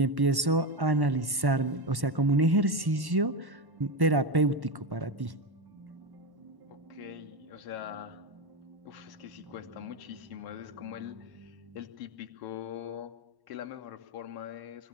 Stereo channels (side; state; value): left; late; 1.1 ms